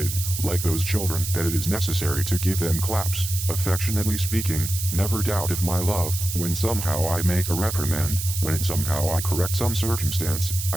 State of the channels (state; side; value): noise; right; hiss, 5 dB below the sound